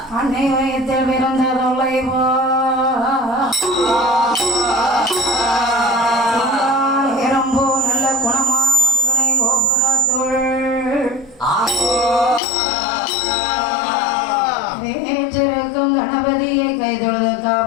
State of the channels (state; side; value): drops out; right; at 12.4 s